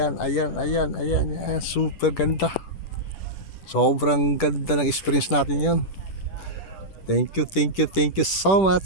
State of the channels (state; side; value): late; right; 10 ms